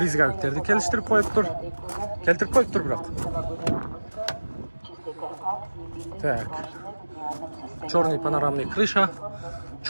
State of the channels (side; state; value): both; inverted; correlation -1.00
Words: келістіріп қойып тұр. Келтіріп қойып тұр бірақ. Так, черный панорамный крыша,